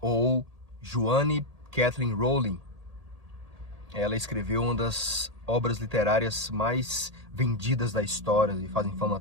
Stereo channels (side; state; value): left; late; 1.8 ms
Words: ou Joanne Kathleen Rowling, ela escreveu uma das obras literárias mais vendidas da história e fazem fama